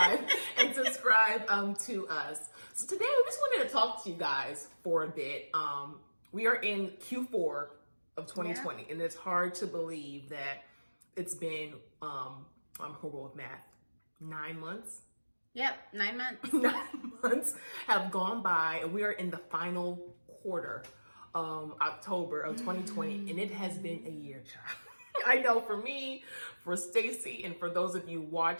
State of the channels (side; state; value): both; inverted; correlation -1.00